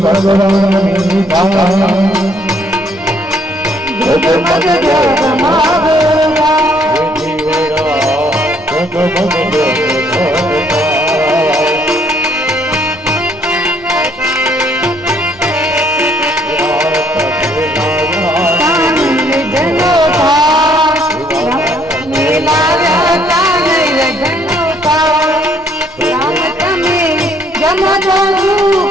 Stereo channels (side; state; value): right; noise; rumble, 26 dB below the sound